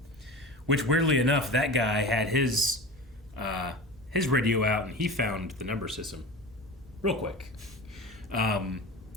Which, weirdly enough, that guy had his his radio out, and he found the number system real quick,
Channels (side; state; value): both; normal; correlation 0.32